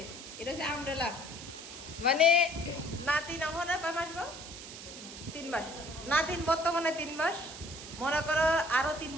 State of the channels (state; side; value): noise; right; hiss, 12 dB below the sound